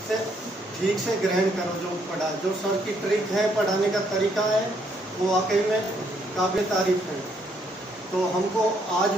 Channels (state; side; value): normal; both; correlation 0.71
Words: से ठीक से ग्रहण करो जो पढ़ा, जो सर की ट्रिक है, पढ़ाने का तरीका है, वो वाकई में काबिल तारीफ है। तो हमको आज